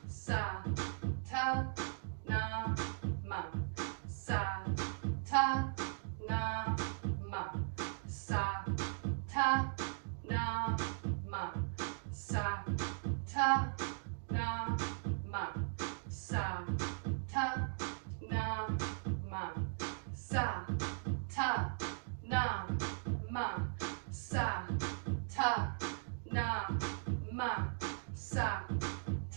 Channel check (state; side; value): silent; left; digital silence